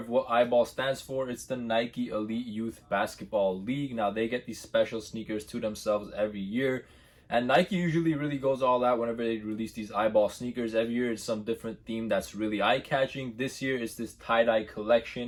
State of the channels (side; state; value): both; identical; correlation 1.00